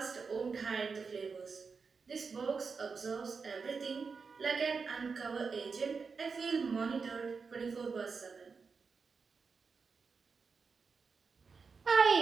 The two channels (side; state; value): left; quieter; 5.1 dB